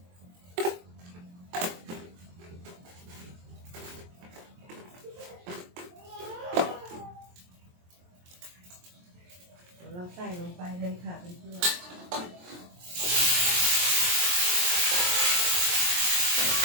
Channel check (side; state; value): left; late; 23 ms